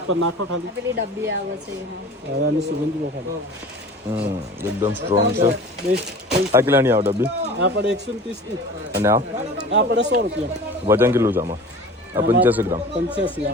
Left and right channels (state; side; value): normal; both; correlation 0.39